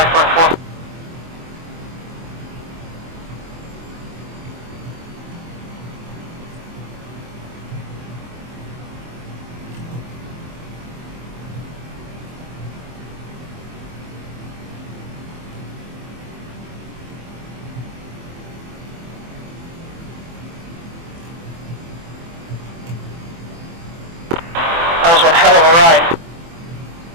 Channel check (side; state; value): left; late; 24 ms